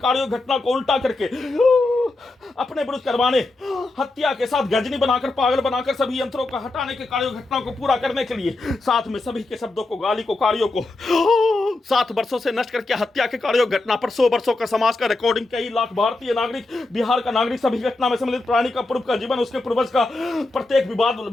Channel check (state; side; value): quieter; right; 3.0 dB